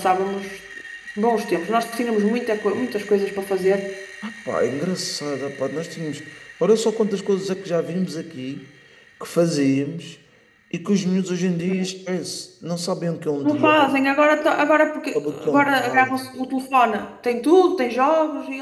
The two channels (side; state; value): both; identical; correlation 1.00